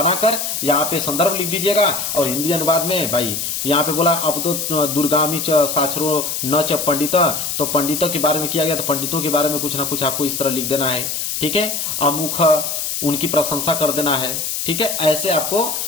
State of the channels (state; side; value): noise; left; hiss, 3 dB below the sound